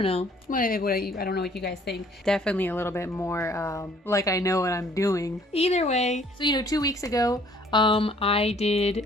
know. I don't know what you guys think. Definitely a little bit more like I know what I'm doing. Either way, so 2 weeks ago, I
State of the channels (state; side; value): normal; both; correlation 0.59